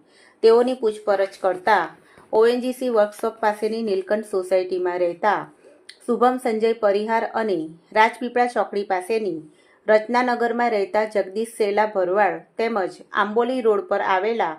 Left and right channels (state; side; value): identical; both; correlation 1.00